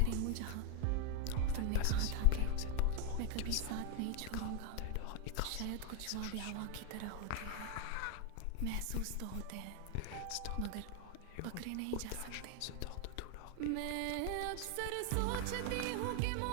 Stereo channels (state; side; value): different; both; correlation 0.01